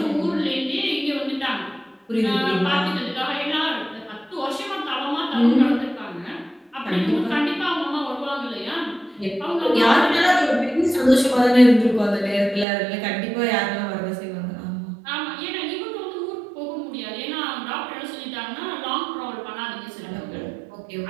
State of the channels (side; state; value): left; drops out; at 12.7 s